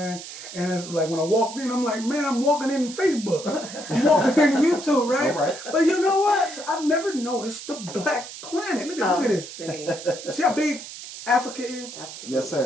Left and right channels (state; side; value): noise; right; hiss, 12 dB below the sound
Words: And it's like when I walked in, I'm like, man, I'm walking in Facebook. I'm walking in YouTube, right? All right. But you know what? I've never noticed the black planet. Look at this. See how big Africa is? Absolutely. Yes,